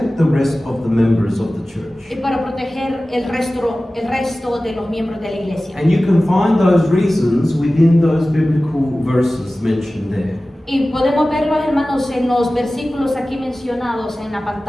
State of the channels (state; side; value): normal; both; correlation 0.96